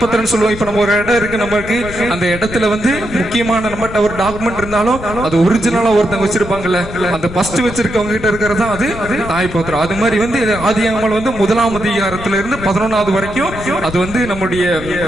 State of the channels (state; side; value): noise; left; rumble, 12 dB below the sound